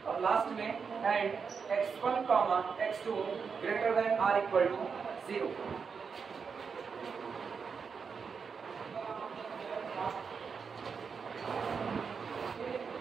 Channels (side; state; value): left; quieter; 5.8 dB